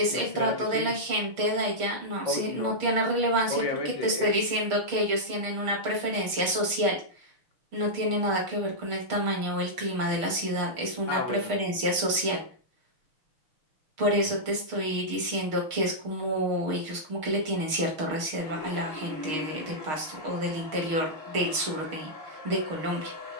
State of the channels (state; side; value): late; left; 6.5 ms